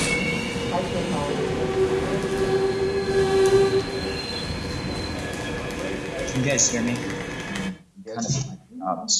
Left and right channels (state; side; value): identical; both; correlation 1.00